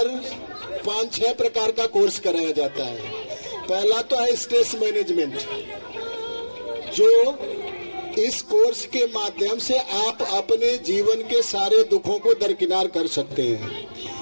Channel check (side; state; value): both; inverted; correlation -1.00